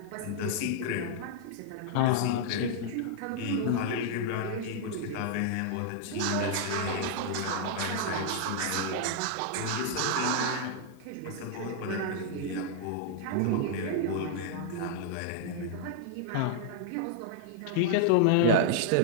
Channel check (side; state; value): both; different; correlation -0.01